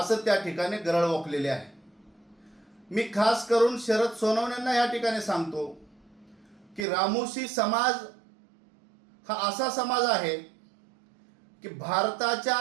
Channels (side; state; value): left; drops out; at 6.9 s